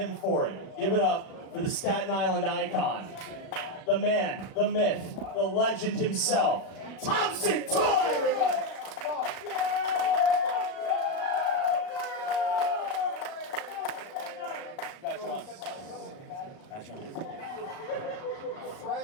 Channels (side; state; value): right; late; 36 ms